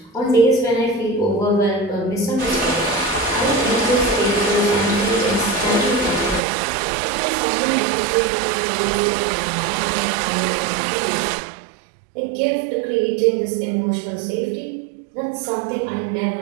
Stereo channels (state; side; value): drops out; left; at 6.4 s